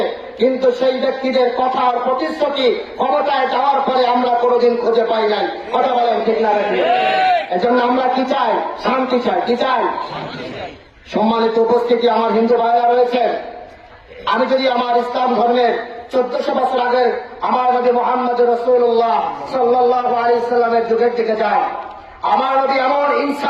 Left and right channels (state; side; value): identical; both; correlation 1.00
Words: কিন্তু সেই ব্যক্তিদের কথা আর প্রতিশ্রুতি ক্ষমতায় যাওয়ার পরে আমরা কোনোদিন খুঁজে পাই নাই। কথা বলেন, ঠিক না? এজন্য আমরা কি চাই? শান্তি চাই। কি চাই? সম্মানিত উপস্থিতি, আমার হিন্দু ভাইরা রয়েছেন। আমি যদি আমার ইসলাম ধর্মের 1400 বছর আগের আমার নবী মুহাম্মদ রাসূলুল্লাহ সাল্লাল্লাহু আলাইহি ওয়াসাল্লামের যুগের দিকে যাই, আমার নবী এমন